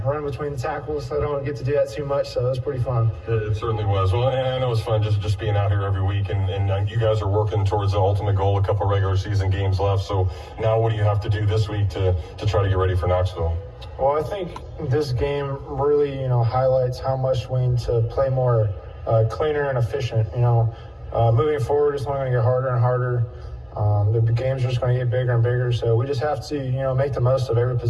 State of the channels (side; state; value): both; identical; correlation 1.00